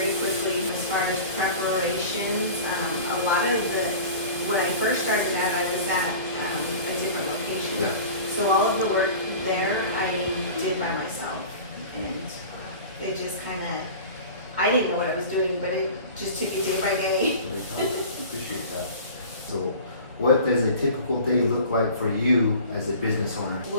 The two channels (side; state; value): both; inverted; correlation -0.39